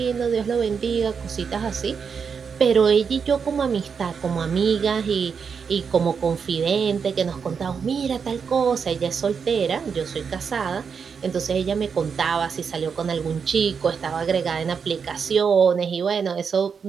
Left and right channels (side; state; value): left; quieter; 6.2 dB